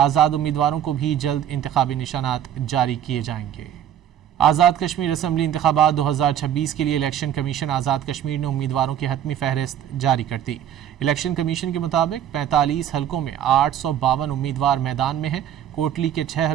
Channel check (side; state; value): left; quieter; 10.2 dB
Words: امیدواروں کو بھی جلد انتخابی نشانات جاری کیے جائیں گے۔ آزاد کشمیر اسمبلی انتخابات 2026 کے لیے الیکشن کمیشن آزاد کشمیر نے امیدواروں کی حتمی فہرست جاری کر دی۔ الیکشن کمیشن کے مطابق 45 حلقوں میں 852 امیدوار میدان میں ہیں۔ کوٹلی کے 6